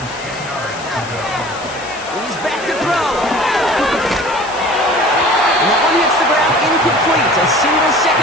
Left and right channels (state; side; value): noise; left; hiss, 15 dB below the sound